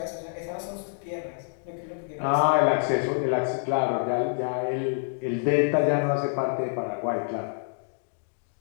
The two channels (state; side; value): silent; right; digital silence